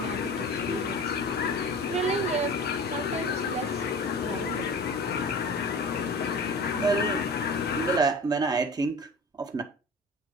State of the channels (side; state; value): both; normal; correlation 0.37